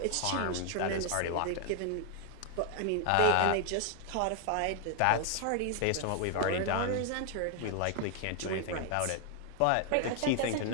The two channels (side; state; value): both; different; correlation 0.00